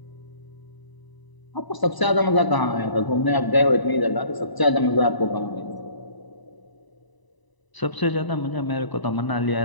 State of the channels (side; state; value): right; late; 1.0 ms